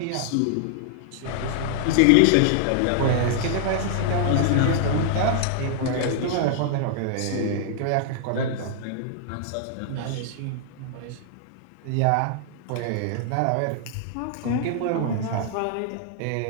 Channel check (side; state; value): both; different; correlation -0.01